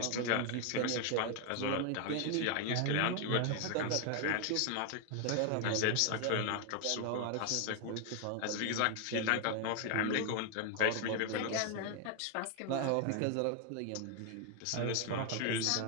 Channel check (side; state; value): both; different; correlation 0.00